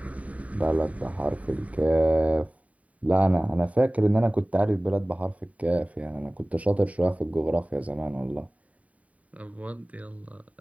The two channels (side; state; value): left; late; 0.068 ms